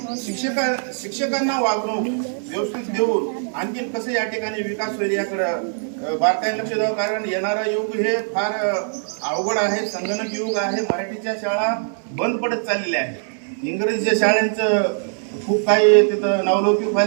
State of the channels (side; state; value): left; silent; digital silence